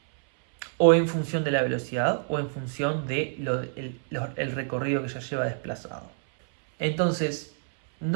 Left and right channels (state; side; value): silent; left; 60 dB below the other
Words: o en función de la velocidad, o en función de el recorrido que ya lleva desplazado. Entonces,